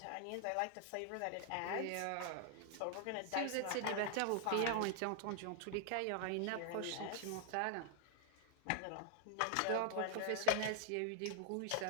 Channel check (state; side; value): different; both; correlation 0.00